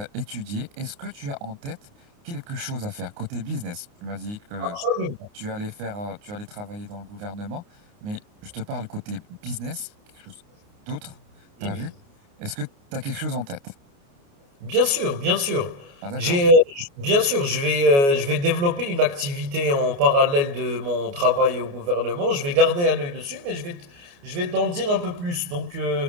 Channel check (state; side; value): late; left; 29 ms